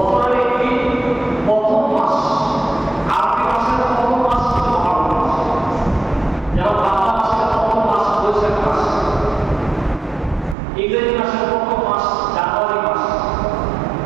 একটি প্রথম মাস, আরবি মাসের প্রথম মাস মহারম মাস, যেমন বাংলা মাসের প্রথম মাস বৈশাখ মাস, ইংরেজি মাসের প্রথম মাস জানুয়ারি মাস।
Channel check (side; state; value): left; drops out; at 10.6 s